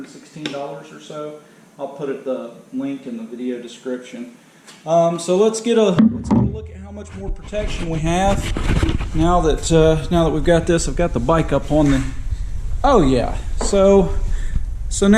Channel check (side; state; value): both; identical; correlation 1.00